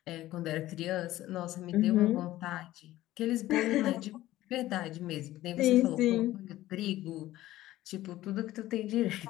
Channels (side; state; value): right; quieter; 15.4 dB